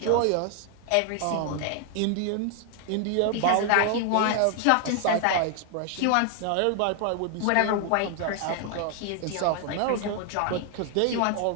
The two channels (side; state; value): both; different; correlation 0.00